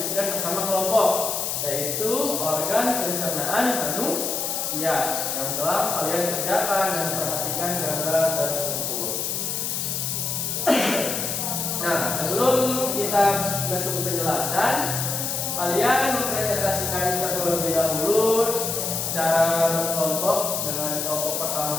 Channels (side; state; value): left; noise; hiss, 1 dB below the sound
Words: bersama kelompok, yaitu organ pencernaan manusia yang telah kalian kerjakan dan perhatikan gambar tersebut. Nah, sebelum kita masuk ke penjelasan, kalian mempresentasikan terlebih dahulu secara berkelompok dengan kelompok